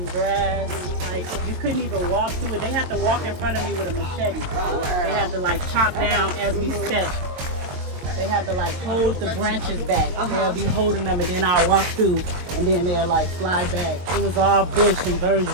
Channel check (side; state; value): left; late; 22 ms